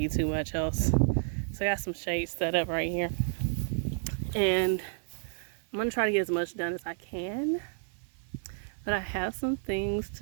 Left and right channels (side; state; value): left; silent; 57 dB below the other